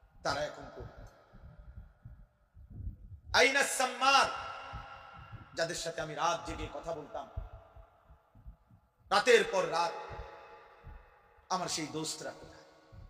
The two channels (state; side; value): identical; both; correlation 1.00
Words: তারা এখন কই? আইনাস সাম্মার, যাদের সাথে আমি রাত জেগে কথা বলতাম, রাতের পর রাত, আমার সেই দোস্তরা কোথায়?